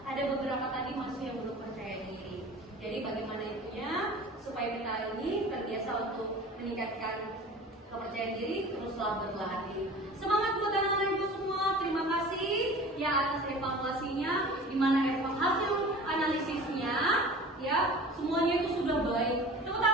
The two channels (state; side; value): normal; both; correlation 0.40